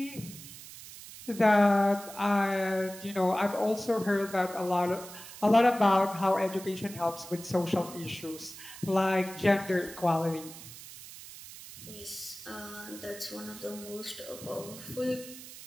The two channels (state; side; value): noise; right; hiss, 15 dB below the sound